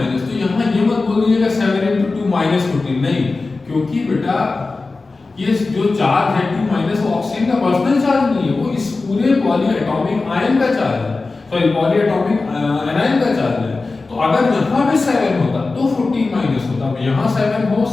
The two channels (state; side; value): quieter; right; 3.7 dB